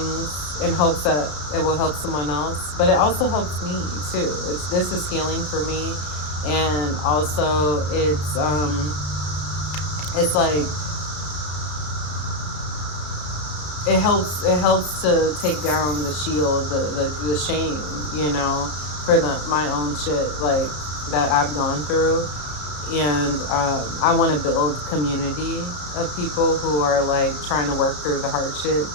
in hopes that it will help someone else, but it also helps me too. This is healing for me, and also it's like it helps to take down the shield, the shame, for my own shit, like, that I've gone through. And I want to build community of people who are like trying to work through the hardship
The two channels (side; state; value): right; late; 33 ms